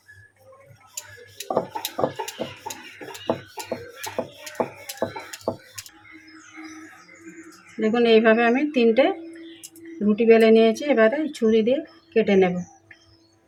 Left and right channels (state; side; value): identical; both; correlation 1.00